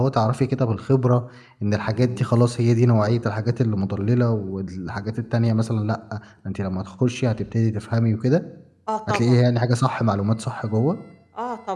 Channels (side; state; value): both; identical; correlation 1.00